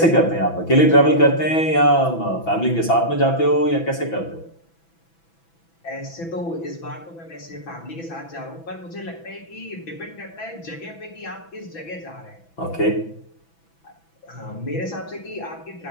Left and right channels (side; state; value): right; late; 6.0 ms